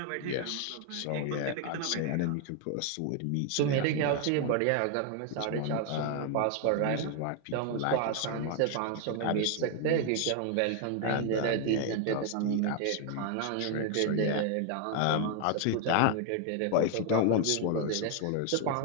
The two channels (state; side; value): different; both; correlation 0.00